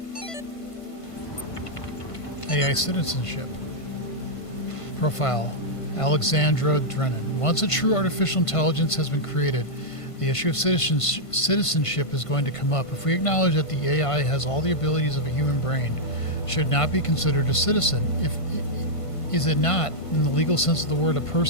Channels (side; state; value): right; late; 1.5 ms